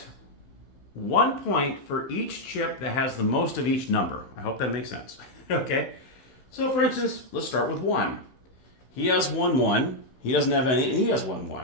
1 point for each chip that has the most of each number. I hope that makes sense. Okay? So, for instance, let's start with 1. He has 1 1. He doesn't have any, and he has 1 1.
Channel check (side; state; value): right; late; 15 ms